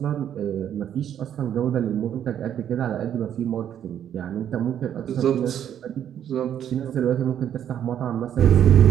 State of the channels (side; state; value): left; quieter; 9.8 dB